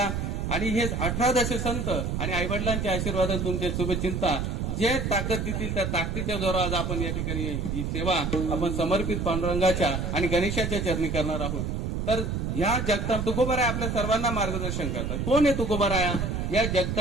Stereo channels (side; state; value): right; noise; rumble, 1 dB below the sound